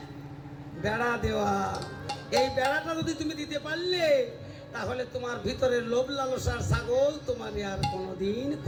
বেড়া দেওয়া। এই বেড়াটা যদি তুমি দিতে পারলে তাহলে তোমার ভিতরের লোভ লালসার ছাগল তোমার আর কোনোদিন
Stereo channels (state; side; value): identical; both; correlation 1.00